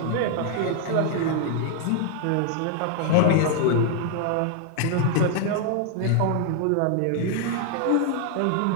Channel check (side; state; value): both; different; correlation 0.00